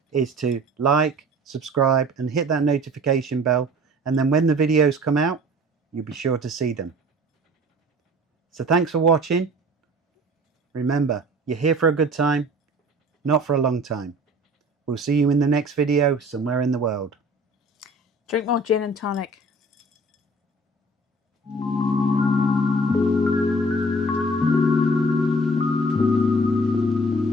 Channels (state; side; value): normal; both; correlation 0.48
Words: is to like, subscribe, and hit that notification bell. And then when the videos come out, you'll be sure to see them. So thanks for watching. Remember, you're here for a good time, not for a long time. We'll see you in the next video somewhere in the world. Drink more gin and tonic.